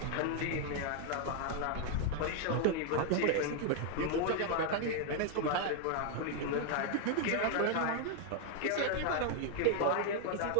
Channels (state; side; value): different; both; correlation 0.00